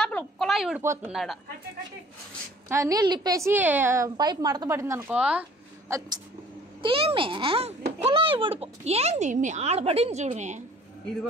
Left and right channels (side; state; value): both; normal; correlation 0.53